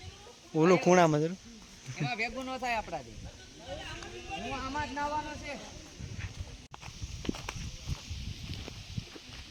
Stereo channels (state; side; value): identical; both; correlation 1.00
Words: ઓલું ખૂણામાં જરૂર ભેગું ન થાય આપણાથી હું આમાં જ નાવાનો છે